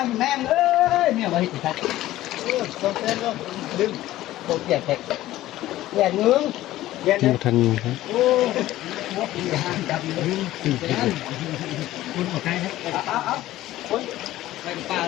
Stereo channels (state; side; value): quieter; right; 15.2 dB